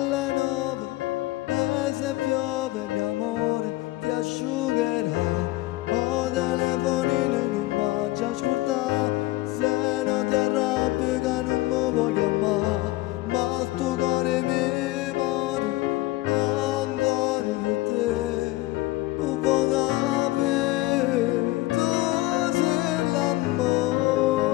9 e se piove mio amore ti asciugherà. O telefonino non mangia ascoltare, se non ti arrabbi che non mi voglio amare, ma sto cuore mi muore ancora per te. Un po' capire, tu sei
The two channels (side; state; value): right; quieter; 18.8 dB